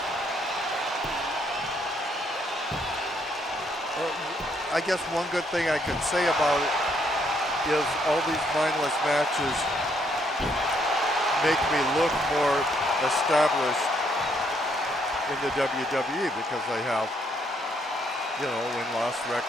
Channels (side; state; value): both; normal; correlation 0.71